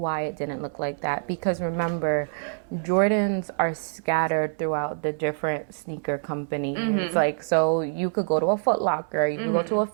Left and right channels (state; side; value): silent; left; digital silence